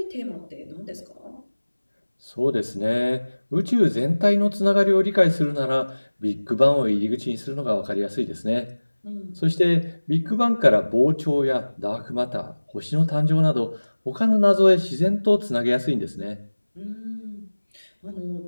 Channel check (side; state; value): both; inverted; correlation -1.00